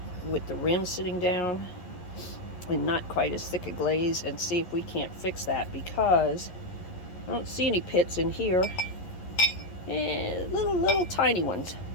with the rim sitting down and not quite as thick a glaze, and see if we can't fix that, because I don't see any pits in here. Little tiny ones.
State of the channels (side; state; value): right; late; 11 ms